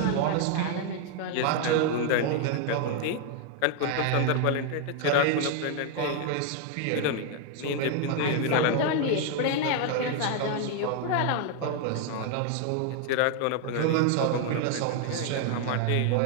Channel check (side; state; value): both; different; correlation 0.00